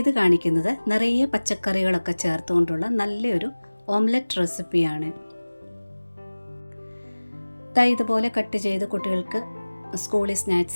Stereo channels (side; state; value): both; inverted; correlation -1.00